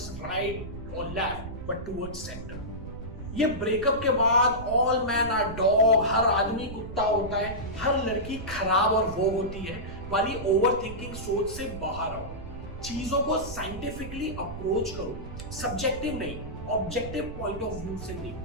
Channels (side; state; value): right; noise; rumble, 11 dB below the sound